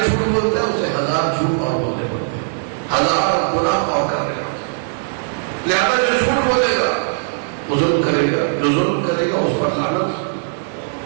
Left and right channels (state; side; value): silent; left; 67 dB below the other